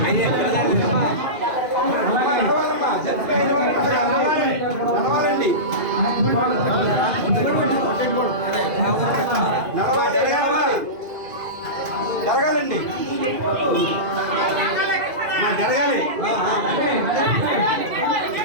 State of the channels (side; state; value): left; late; 2.5 ms